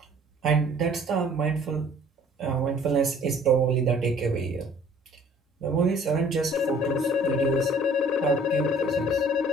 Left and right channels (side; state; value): both; normal; correlation 0.54